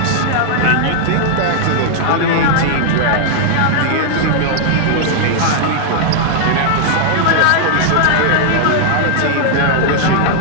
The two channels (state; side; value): different; both; correlation -0.01